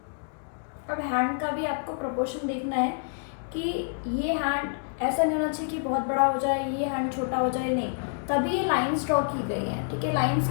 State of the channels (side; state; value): right; silent; digital silence